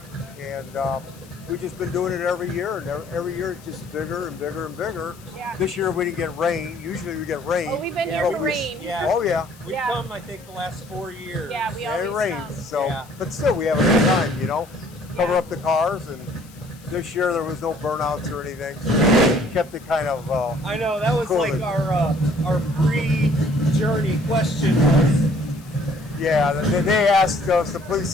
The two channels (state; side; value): noise; left; hiss, 24 dB below the sound